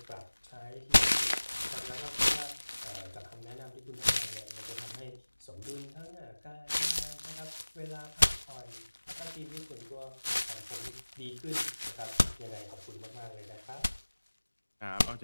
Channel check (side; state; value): both; inverted; correlation -1.00